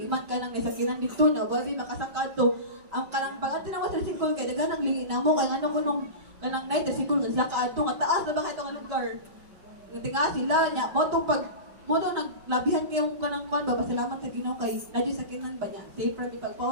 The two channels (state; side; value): late; left; 5.3 ms